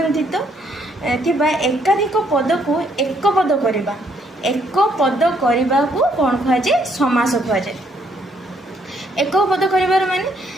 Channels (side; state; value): both; normal; correlation 0.69